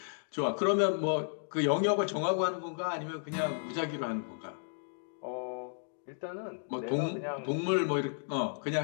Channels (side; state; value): right; silent; digital silence